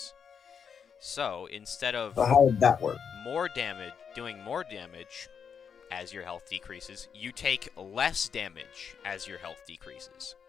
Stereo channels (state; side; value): quieter; right; 6.9 dB